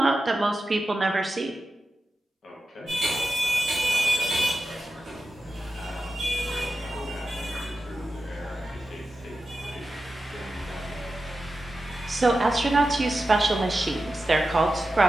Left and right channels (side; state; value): both; normal; correlation 0.92